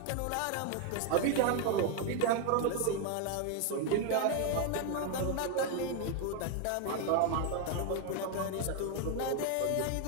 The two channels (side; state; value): both; different; correlation 0.01